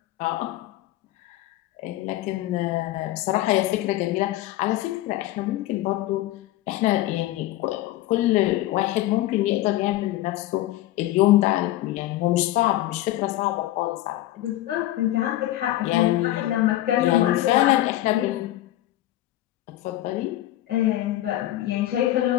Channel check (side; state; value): right; quieter; 15.2 dB